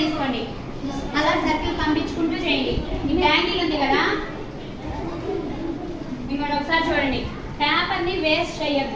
తీసుకోండి, అలా సర్కిల్ పంపించుకుంటూ చేయండి. ఈ బ్యాంగిల్ ఉంది కదా, ఇక్కడ ఒకసారి చూడండి, పేపర్ని వేస్ట్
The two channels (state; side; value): identical; both; correlation 1.00